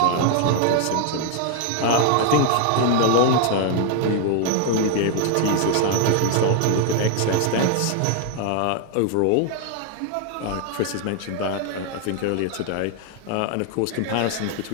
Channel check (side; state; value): both; different; correlation 0.00